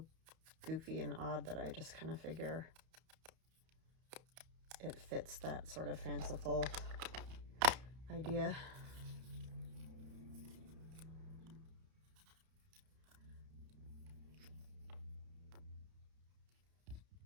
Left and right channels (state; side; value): late; left; 31 ms